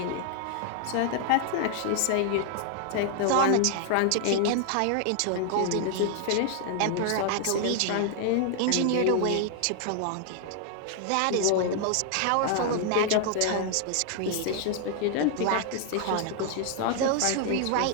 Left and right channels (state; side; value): different; both; correlation 0.00